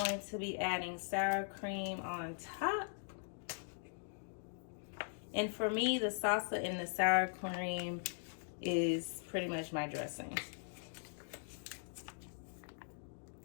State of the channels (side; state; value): right; silent; digital silence